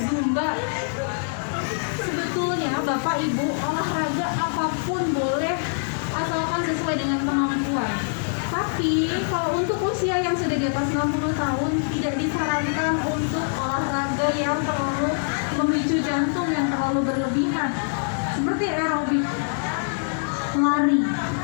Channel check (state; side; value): silent; right; digital silence